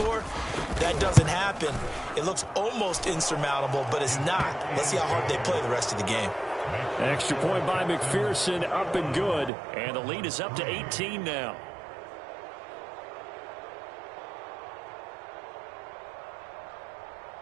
That doesn't happen. It looks almost insurmountable, but it's not. Let's see how hard they play the rest of the game. Extra point by McPherson, up and good. And the lead is up to 18 now.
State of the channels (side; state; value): left; drops out; at 9.5 s